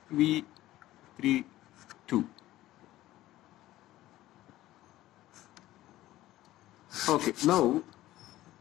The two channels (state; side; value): quieter; right; 15.5 dB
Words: V32. Okay, now